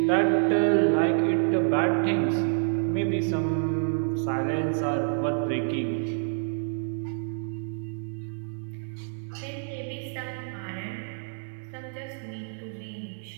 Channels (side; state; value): left; silent; digital silence